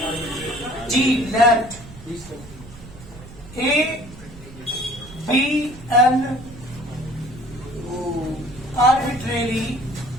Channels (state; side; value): noise; right; rumble, 18 dB below the sound